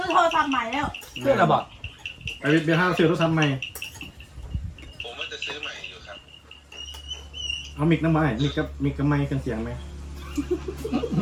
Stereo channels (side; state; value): both; identical; correlation 1.00